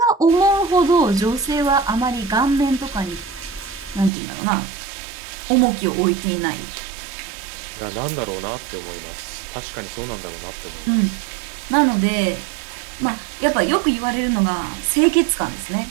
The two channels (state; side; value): drops out; left; at 4.1 s